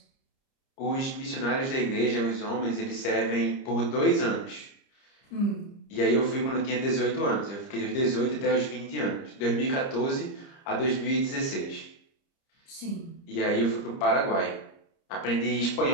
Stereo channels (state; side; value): late; right; 30 ms